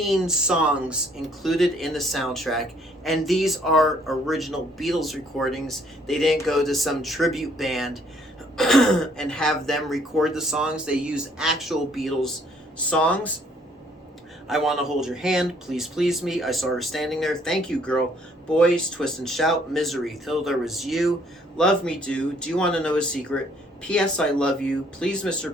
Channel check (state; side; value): normal; both; correlation 0.64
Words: songs included in the soundtrack, and these are original Beatles recordings. They didn't go to some tribute band and have them record the songs. They used actual Beatles songs. I Want to Hold Your Hand, Please Please Me, I Saw Her Standing There, Thank You Girl, Boys, Twist and Shout, Misery, Till There Was You, Love Me Do You Want to Know a Secret, P.S. I Love You, Please Mr.